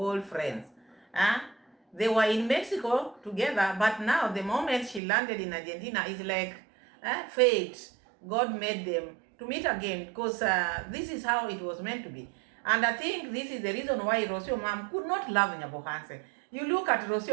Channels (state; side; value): drops out; left; at 5.0 s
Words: friends. They were in Mexico together, but now the moment she landed in Argentina, it's like fate. God made them to meet again, because this is how it was meant to be. And I think this is the reason why Rosio Mom could not love Nyabohanse. You look at